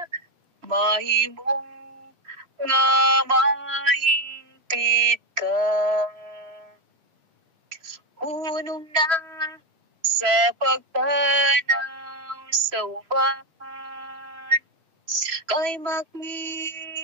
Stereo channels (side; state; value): left; late; 3.0 ms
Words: Mahimong nga mahingpit ka. Unong na sa pagtanaw sa uban. Kay